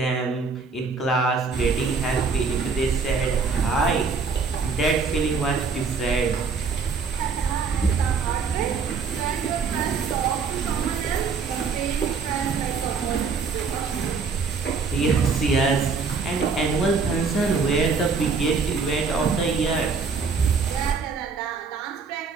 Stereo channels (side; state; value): left; quieter; 5.0 dB